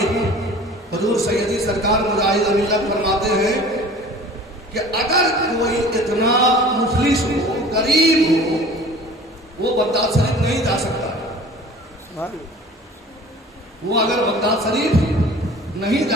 حضور سیدی سرکار مجاہد ملت فرماتے ہیں کہ اگر کوئی اتنا مفلس ہو، غریب ہو، وہ بغداد شریف نہیں جا سکتا، وہ اگر بغداد شریف نہیں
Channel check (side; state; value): both; normal; correlation 0.44